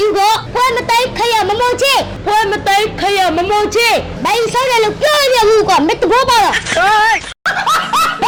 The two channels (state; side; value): identical; both; correlation 1.00